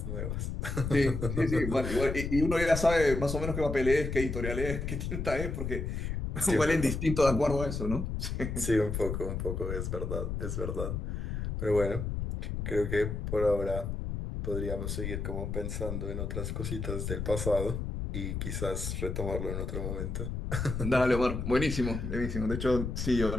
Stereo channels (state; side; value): noise; left; rumble, 3 dB below the sound